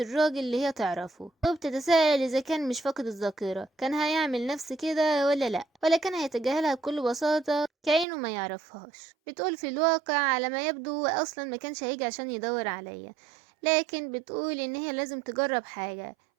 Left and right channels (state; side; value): drops out; left; at 8.1 s